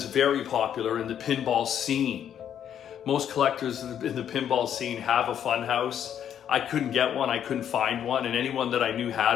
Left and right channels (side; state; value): right; quieter; 9.5 dB